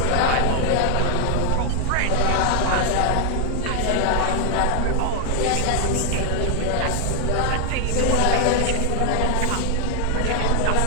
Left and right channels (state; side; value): different; both; correlation 0.00